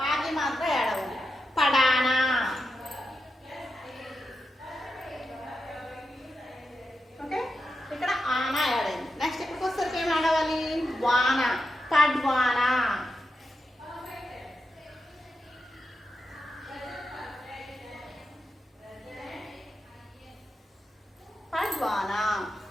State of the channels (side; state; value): both; normal; correlation 0.88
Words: ఆకి మాత్రం యాడ్ అవ్వాలి. పడానా. ఓకే, ఇక్కడ ఆనా యాడ్ అయింది. నెక్స్ట్ ఇక్కడికి వస్తే ఏం యాడ్ అవ్వాలి, వాన, పడ్వానా. పడ్వానా.